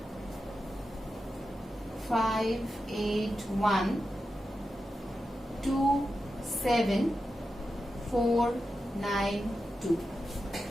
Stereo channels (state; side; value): normal; both; correlation 0.90